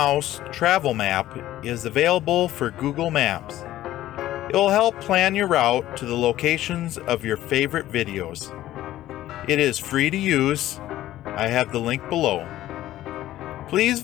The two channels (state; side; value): quieter; right; 14.2 dB